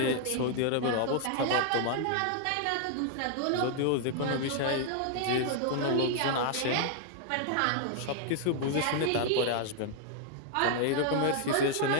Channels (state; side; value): different; both; correlation 0.00